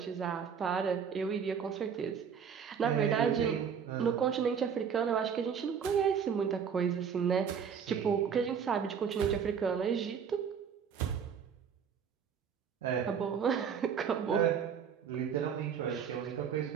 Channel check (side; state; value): left; quieter; 7.2 dB